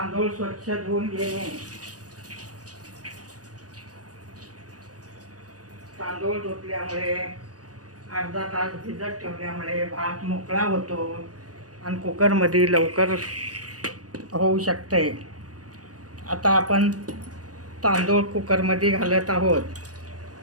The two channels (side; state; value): left; late; 0.67 ms